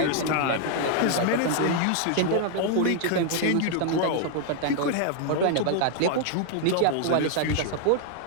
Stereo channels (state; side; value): different; both; correlation 0.00